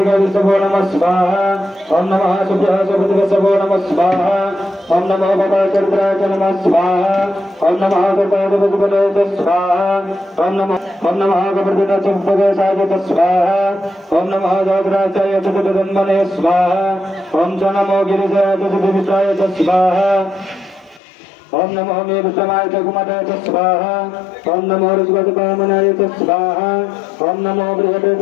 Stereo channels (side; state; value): right; drops out; at 21.0 s